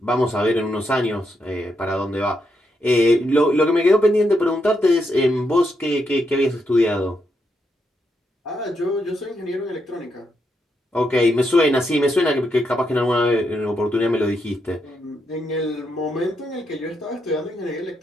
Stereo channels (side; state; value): both; normal; correlation 0.81